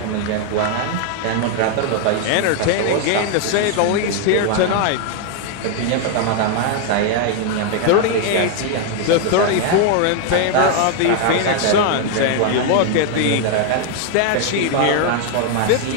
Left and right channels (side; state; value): both; different; correlation 0.00